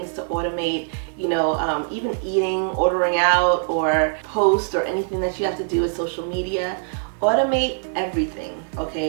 to automate, you know, even eating, ordering out, or post, or anything that you have to do with social media. automate everything,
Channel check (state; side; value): silent; left; digital silence